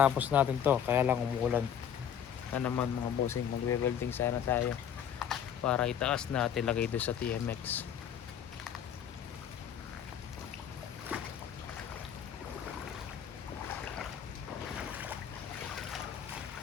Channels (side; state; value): right; quieter; 9.0 dB